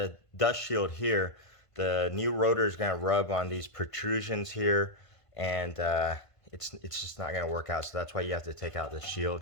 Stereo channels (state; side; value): late; right; 1.5 ms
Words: dust shield here, the new rotor is going to rub on these protrusions here, and it's just not going to work out. So that's why you have to take out the